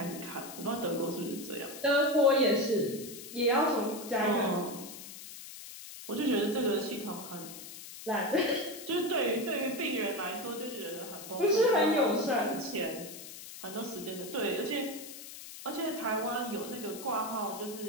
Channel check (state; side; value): noise; left; hiss, 13 dB below the sound